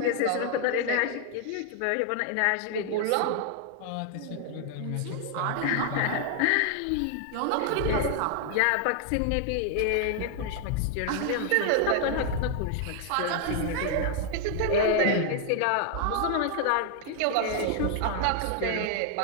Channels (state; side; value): different; both; correlation 0.00